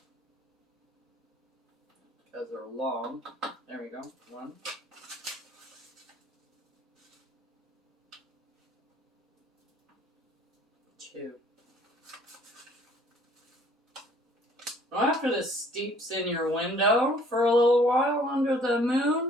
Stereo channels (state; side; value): normal; both; correlation 0.57